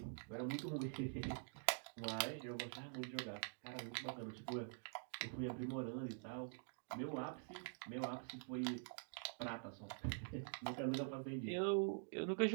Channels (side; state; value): left; silent; digital silence